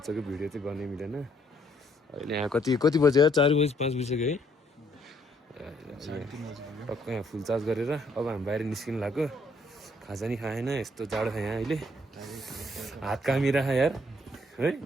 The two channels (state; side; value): normal; both; correlation 0.68